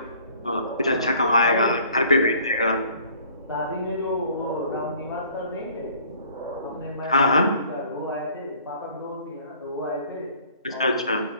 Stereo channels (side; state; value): both; inverted; correlation -0.54